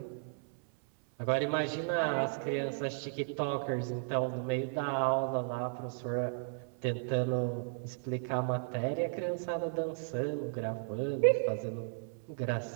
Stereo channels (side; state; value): left; silent; 55 dB below the other